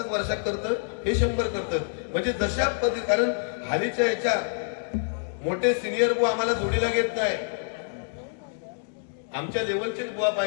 वर्षात करतं, हे 100 करतात. म्हणजे जशा पद्धती, कारण हालीच्या याच्या मोठे सिनियर बुवा आम्हाला जोडीला घेत नाही. आमच्या लेवलचेच बुवा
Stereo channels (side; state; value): right; silent; digital silence